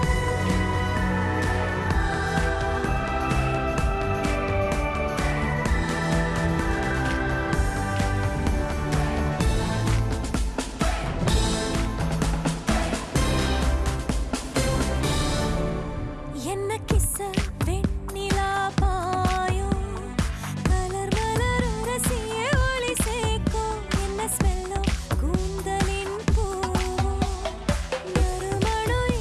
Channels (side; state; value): both; identical; correlation 1.00